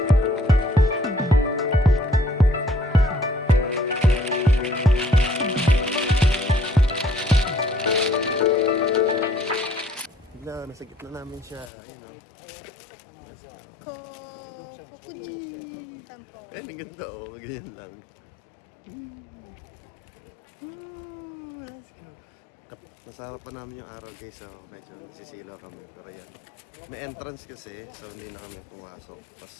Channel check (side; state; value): right; drops out; at 11.7 s